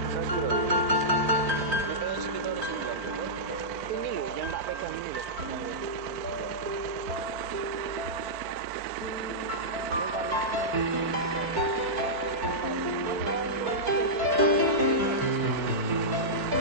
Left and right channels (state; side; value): late; left; 4.5 ms